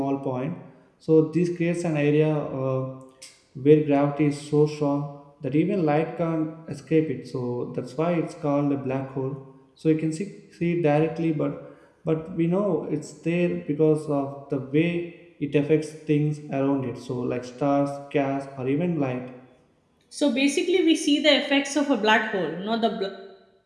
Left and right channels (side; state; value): both; identical; correlation 1.00